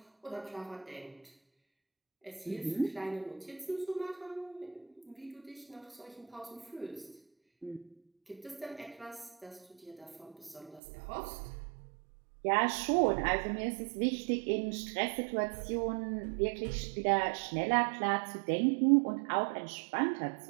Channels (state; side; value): drops out; left; at 10.8 s